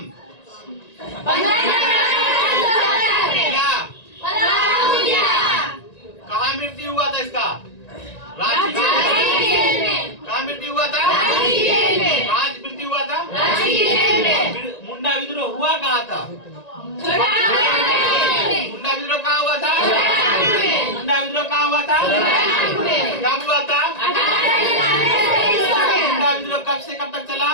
कहाँ मृत्यु हुआ था इसका? रांची जेल में। कहाँ मृत्यु हुआ था? कहाँ मृत्यु हुआ था? मुंडा विद्रोह हुआ कहाँ था? मुंडा विद्रोह कहाँ हुआ था? मुंडा विद्रोह कहाँ हुआ था? कब हुआ था? मुंडा विद्रोह कब से कब तक चला?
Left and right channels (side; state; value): right; late; 1.9 ms